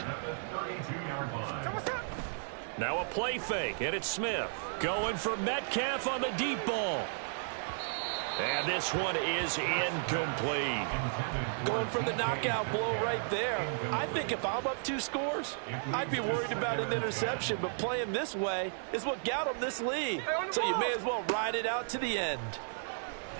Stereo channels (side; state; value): left; silent; digital silence